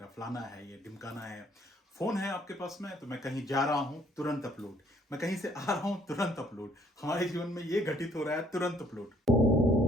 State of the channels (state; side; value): normal; both; correlation 0.63